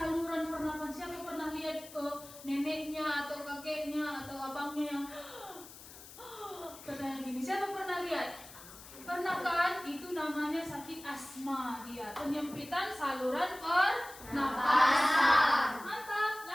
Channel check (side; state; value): left; noise; hiss, 17 dB below the sound